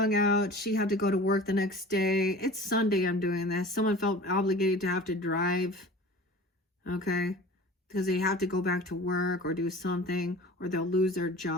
out. She had to go to work the next day. It's Sunday I'm doing this. Someone felt obligated to have to drive. Okay? Because they have to go back to work or do something, or they'll lose their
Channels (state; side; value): normal; both; correlation 0.40